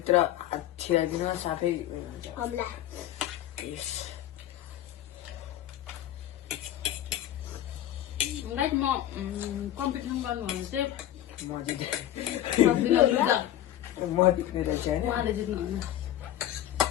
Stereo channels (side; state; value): right; quieter; 12.6 dB